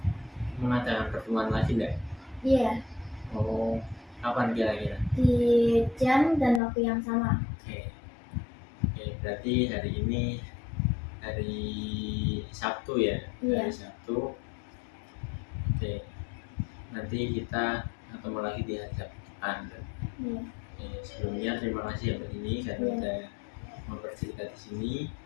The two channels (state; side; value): drops out; right; at 6.6 s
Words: mengadakan pertemuan lagi enggak? Iya. Oh, kapan kira-kira? Di jam dan waktu yang sama. Oke, berarti hari ini hari Sabtu ya? Iya. Hari Sabtu. Oke, nanti kita ketemu lagi di hari Sabtu depan. Iya. Sebelumnya terima kasih ya Mbak Dini karena udah mau bercerita di sini.